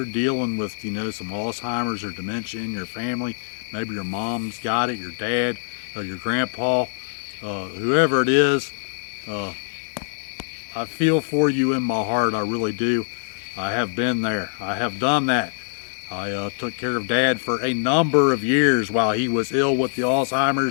dealing with, you know, some Alzheimer's or dementia in your family, maybe your mom's got it, your dad, or your grandpa, whoever it is, I feel for you in my heart, I really do. I have been there. I have done that. I took care of Dad for a number of years while he was ill with the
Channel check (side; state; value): right; silent; digital silence